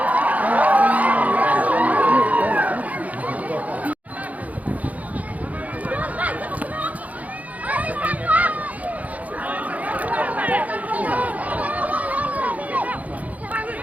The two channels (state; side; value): late; left; 0.073 ms